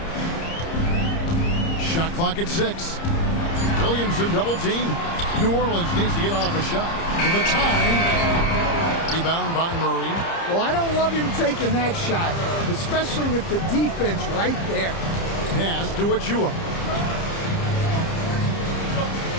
Shot clock at 6. Williamson double team. New Orleans needs to get off a shot. For the time. Rebound by Murray. Well, I don't love him taking that shot, especially with the defense right there. Pass to Achua.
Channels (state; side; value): late; right; 30 ms